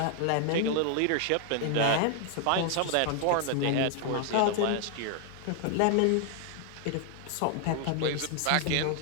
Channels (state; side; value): different; both; correlation 0.00